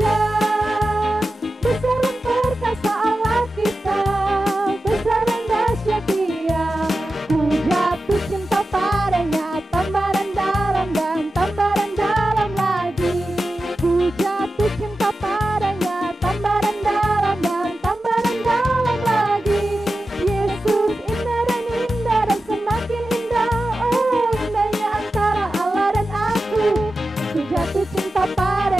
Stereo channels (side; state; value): both; normal; correlation 0.93